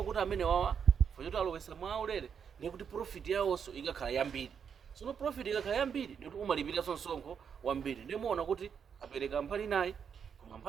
kuti amene wawa fanyoti alowesa mwaulere ndiye kuti profit yawonso ikakhala yambiri. Sono profit ikakhala yambiri ndikuti umalipira msonkho wambiri. Ndiye muona kuti apereka mbali inayi koma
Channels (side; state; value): left; quieter; 7.1 dB